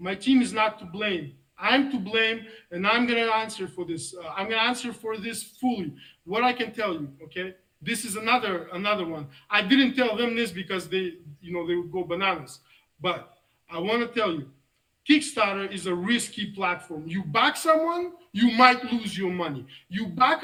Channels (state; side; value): identical; both; correlation 1.00